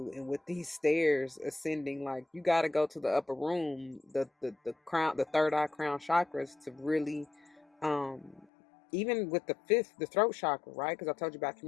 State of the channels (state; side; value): drops out; right; at 8.5 s